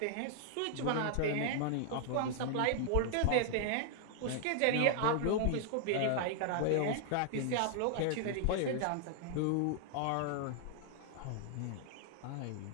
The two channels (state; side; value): different; both; correlation 0.00